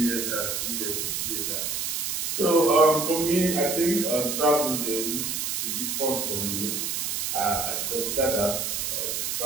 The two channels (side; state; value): right; noise; hiss, 1 dB below the sound